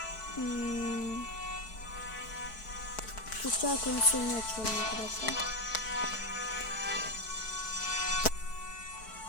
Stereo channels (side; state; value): right; late; 4.6 ms